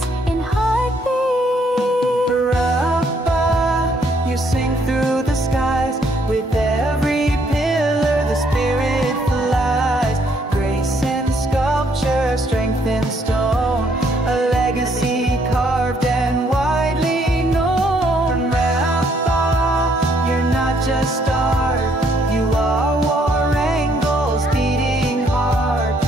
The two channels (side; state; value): both; normal; correlation 0.69